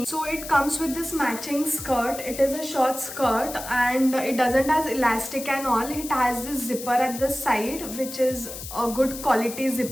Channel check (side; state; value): left; noise; hiss, 10 dB below the sound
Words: So it comes with this matching skirt. It is a short skirt, and it doesn't have elastic and all. It has this zipper at the side, which is a good quality